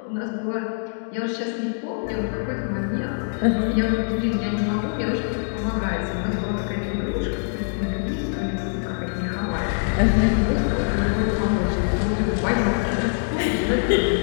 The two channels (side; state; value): right; silent; digital silence